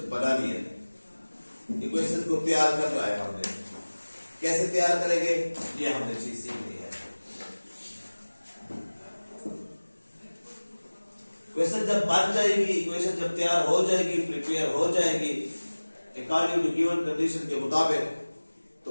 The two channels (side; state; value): both; inverted; correlation -1.00